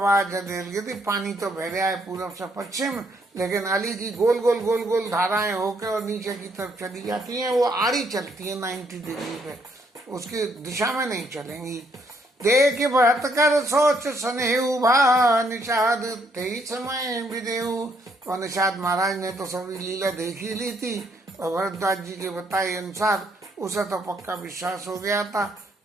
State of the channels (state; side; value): normal; both; correlation 0.71